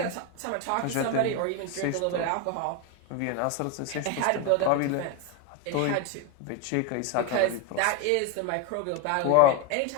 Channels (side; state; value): both; different; correlation 0.02